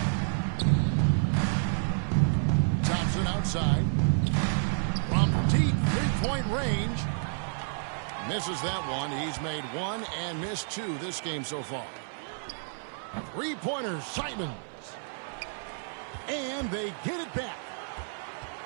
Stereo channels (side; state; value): left; silent; 57 dB below the other